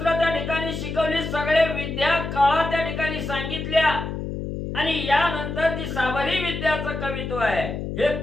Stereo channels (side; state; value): left; noise; hum, 5 dB below the sound